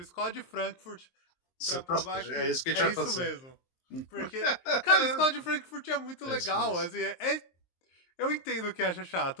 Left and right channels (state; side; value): late; right; 23 ms